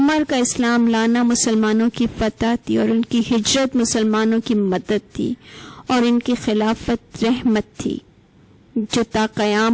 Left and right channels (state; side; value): identical; both; correlation 1.00